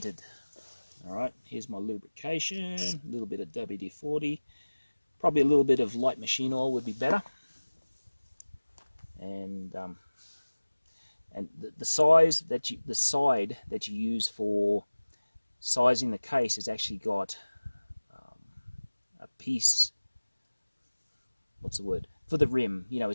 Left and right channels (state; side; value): inverted; both; correlation -1.00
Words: All right, here's my lubrication, a little bit of WD-40, probably a little bit of light machine oil would be better. And the side that you use for sizing the case has actually got a piece. What's the word for the rim? You know,